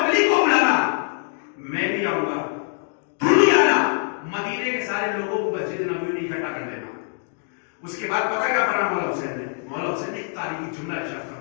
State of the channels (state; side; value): silent; right; 63 dB below the other